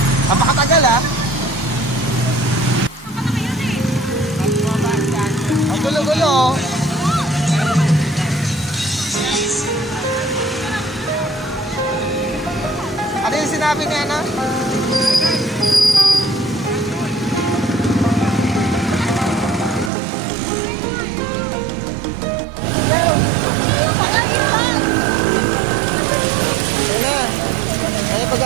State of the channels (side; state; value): left; drops out; at 19.9 s